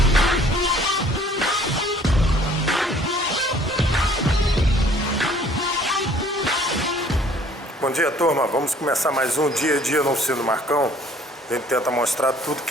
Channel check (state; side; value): normal; both; correlation 0.56